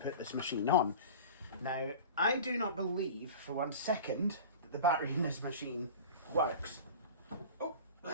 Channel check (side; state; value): both; inverted; correlation -0.35